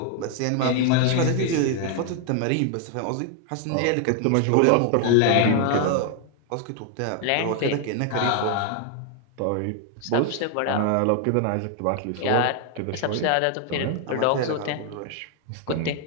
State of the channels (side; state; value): both; different; correlation 0.00